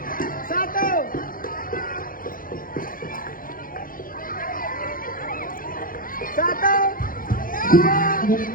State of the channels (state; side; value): late; right; 0.41 ms